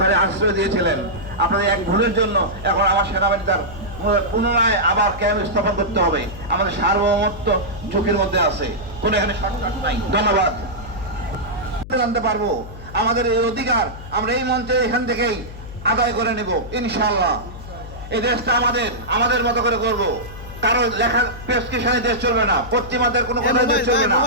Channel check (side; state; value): left; noise; hum, 13 dB below the sound